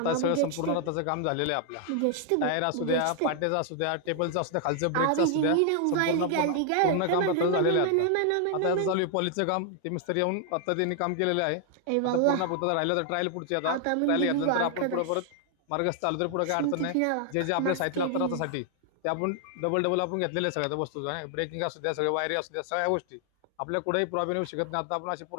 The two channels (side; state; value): both; different; correlation 0.00